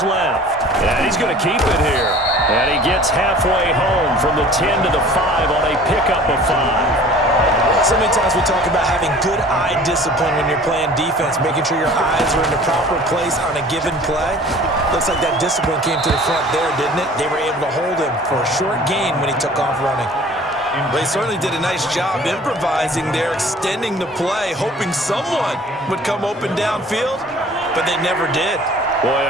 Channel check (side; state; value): both; normal; correlation 0.47